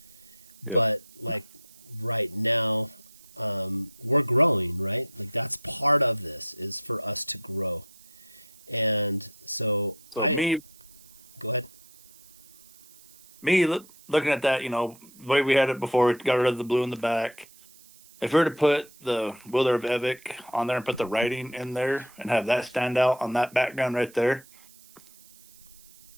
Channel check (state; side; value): noise; right; hiss, 24 dB below the sound